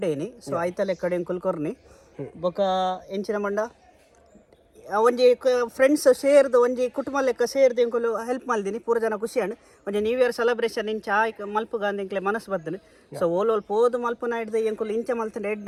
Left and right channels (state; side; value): identical; both; correlation 1.00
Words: ಸೊ ಆಯ್ತ ಲೆಕ್ಕಡೆ ಎಂಕುಲ್ ಕೊರ್ನಿ ಬೊಕ್ಕ ಎಂಚಿನ ಮಂಡ ಒಂಜಿ ಫ್ರೆಂಡ್ಸ್ ಸೇರ್ದು ಒಂಜಿ ಕುಟುಂಬ ಲೆಕ್ಕ ಸೇರ್ದು ಎಂಕುಲು ಹೆಲ್ಪ್ ಮಲ್ದಿನಿ. ಪೂರ ಜನ ಖುಷಿ ಅಂಡ್ ಒಂಜಿ ನ್ಯೂ ಇಯರ್ ಸೆಲೆಬ್ರೇಷನ್ ಇಂಚ ಮಲ್ಪುಗ ಅಂದ ಎಂಕ್ಲೆ ಮನಸ್ಸು ಬರ್ತದೆ. ಸೊ ಓಲ್ ಪೋದು ಮಲ್ಪುನ ಹಿಡ್ದು ಎಂಕುಲು ಇಂಚ ಮಲ್ತಂಡು